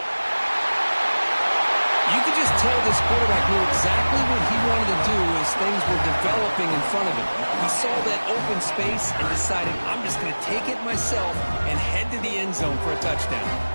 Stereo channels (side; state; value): both; inverted; correlation -1.00